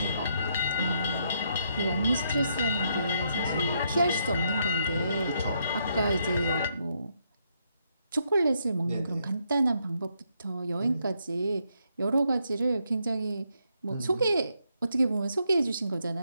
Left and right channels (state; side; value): inverted; both; correlation -0.76